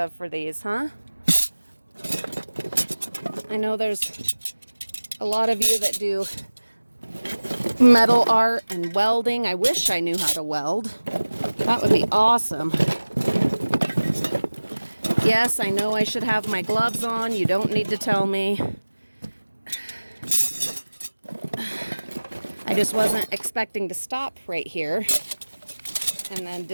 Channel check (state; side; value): inverted; both; correlation -1.00